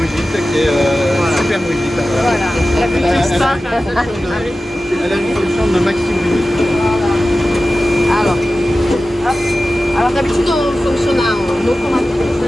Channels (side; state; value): both; normal; correlation 0.95